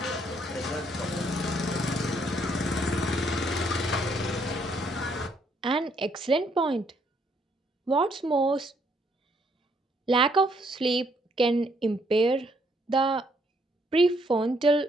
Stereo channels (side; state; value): both; normal; correlation 0.70